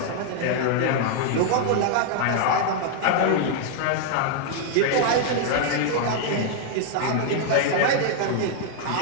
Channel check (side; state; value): both; different; correlation 0.00